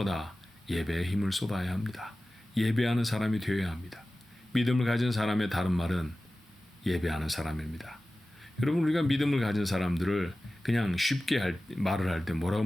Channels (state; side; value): normal; both; correlation 0.96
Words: 예배에 힘을 쏟아야 합니다. 예배하는 사람이 되어야 합니다. 믿음을 가진 사람의 다른 말은 예배하는 사람입니다. 여러분, 우리가 믿음을 가진 사람들을 그냥 쉽게 말을 할 때 뭐라고